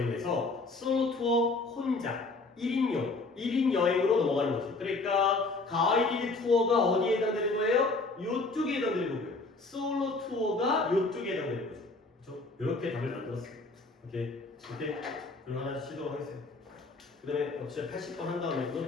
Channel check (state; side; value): quieter; right; 3.5 dB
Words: 솔로 투어 혼자 1인 여행으로 넘어가는 거죠. 그러니까 가이디드 투어가 어디에 해당되는 거예요? 요쪽에 해당되는 거고요. 솔로 투어가 요쪽에 해당되는 거죠. 그렇죠? 이렇게 답을 만들었어요. 오케이. 이렇게 그럼 하나 시도록 하겠습니다. 그 다음에 역시 80번 한 다음에